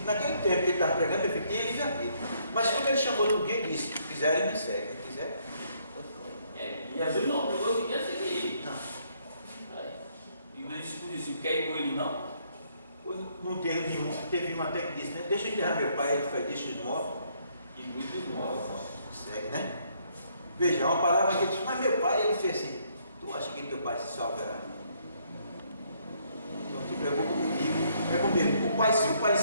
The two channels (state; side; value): inverted; both; correlation -0.69